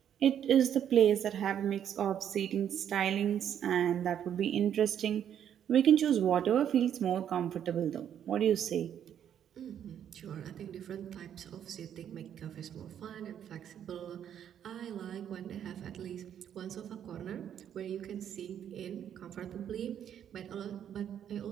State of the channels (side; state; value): left; quieter; 9.5 dB